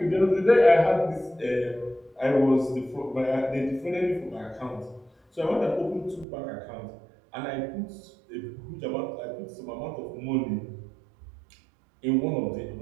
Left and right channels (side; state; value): left; drops out; at 6.2 s